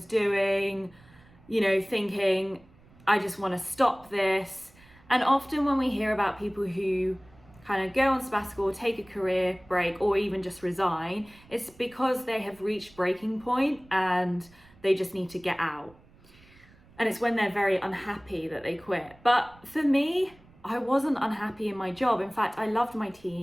doing, thinking, I just want to stop this. And often when we hear about people who kind of go on sabbatical, take a career break, or even just resign, it's because they have reached breaking point and they just need to get out. And it's when they're very unhappy that they quit. But for me, I wasn't unhappy in my job. In fact, I loved my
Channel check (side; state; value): right; noise; rumble, 27 dB below the sound